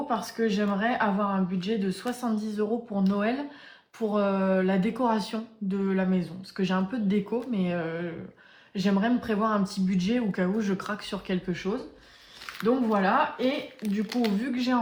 parce que j'aimerais avoir un budget de 70 euros pour Noël pour la décoration de la maison. Parce que j'ai un peu de déco, mais j'aimerais me prévoir un petit budget au cas où je craque sur quelque chose. Donc voilà, et du coup, vu que j'ai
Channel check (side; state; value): both; identical; correlation 1.00